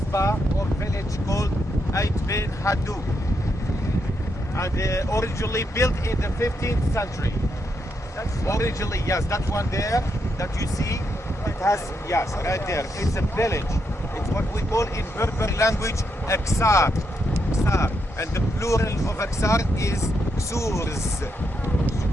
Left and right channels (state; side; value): normal; both; correlation 0.81